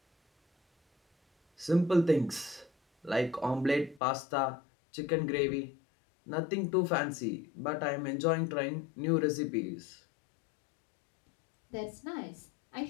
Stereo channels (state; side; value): drops out; right; at 4.0 s